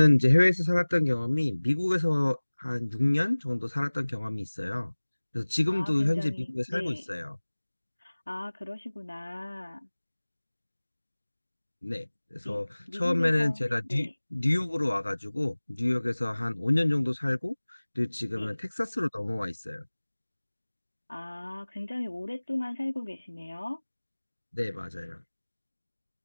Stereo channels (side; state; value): both; inverted; correlation -1.00